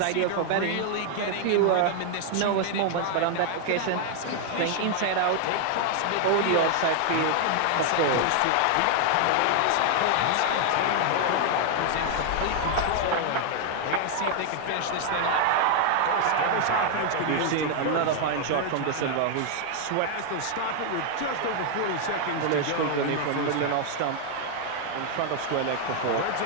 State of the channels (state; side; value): different; both; correlation 0.00